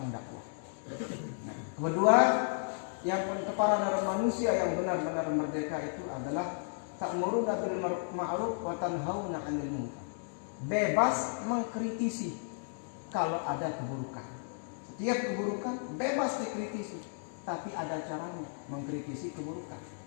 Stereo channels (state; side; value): silent; right; digital silence